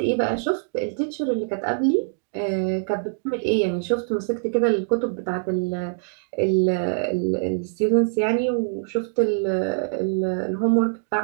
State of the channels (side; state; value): left; silent; digital silence